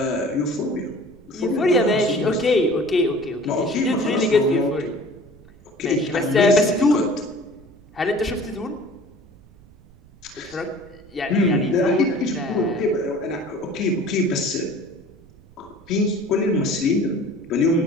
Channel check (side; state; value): right; noise; rumble, 25 dB below the sound